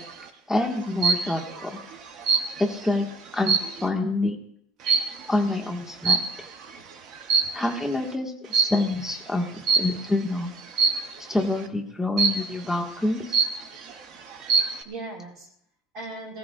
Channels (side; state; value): both; normal; correlation 0.51